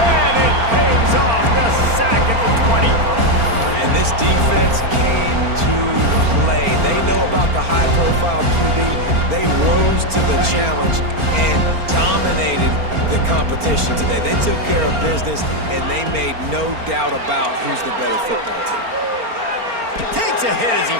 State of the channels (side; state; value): left; late; 4.4 ms